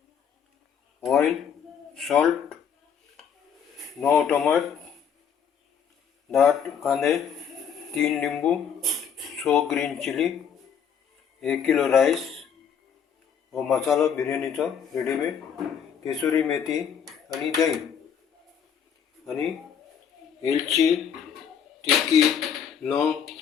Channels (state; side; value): quieter; right; 7.6 dB